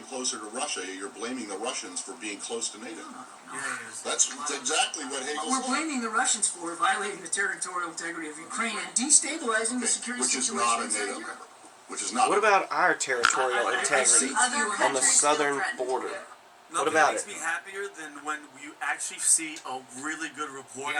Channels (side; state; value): both; identical; correlation 1.00